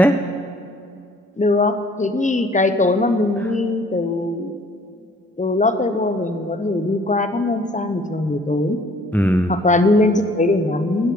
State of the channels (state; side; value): normal; both; correlation 0.57